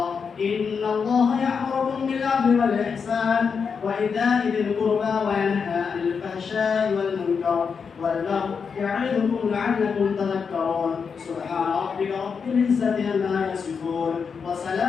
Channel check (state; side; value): quieter; right; 5.9 dB